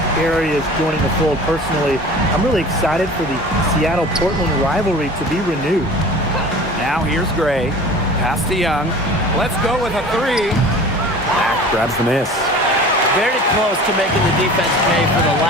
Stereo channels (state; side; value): normal; both; correlation 0.41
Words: areas joining the fold. Personally, I'm really excited for the Seattle-Portland rivalry to be renewed. Now here's Gray. Pass to Young. Let's go with a three. Mack grabs the miss. Very close to making the defense pay for the